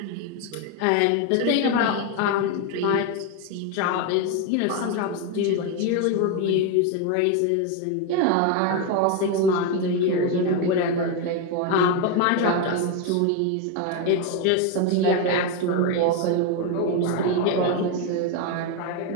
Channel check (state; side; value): different; both; correlation 0.02